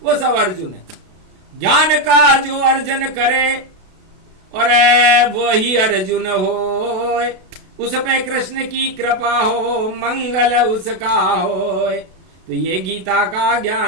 वो सब अर्जुन है। ज्ञान का जो अर्जन करे और वो ही अर्जुन हो, उस पे कृष्ण की कृपा हो, मंगल उसका हो। तो ये गीता का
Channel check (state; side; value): late; left; 32 ms